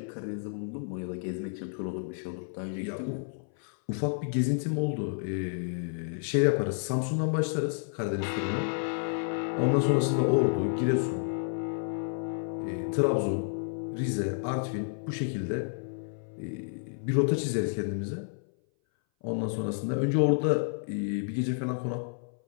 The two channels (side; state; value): right; silent; 57 dB below the other